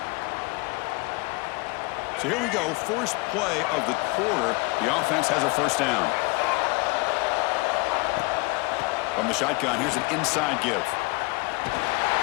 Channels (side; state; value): right; quieter; 26.0 dB